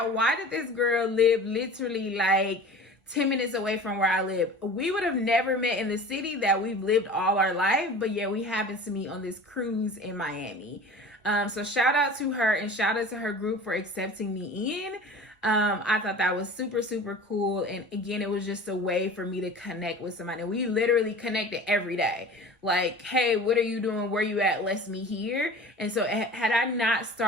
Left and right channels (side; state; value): both; normal; correlation 0.39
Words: why did this girl live literally like 10 minutes away from where I live? We would have never met in the city that we've lived all our life, but yeah, we happened to meet on this cruise in Miami. So shout out to her and shout out to her group for accepting me in. I thought that was super, super cool. And again, it was just a way for me to connect with somebody. And we literally connected every day. Like, hey, what are you doing? Where you at? Let's meet here. And so had I not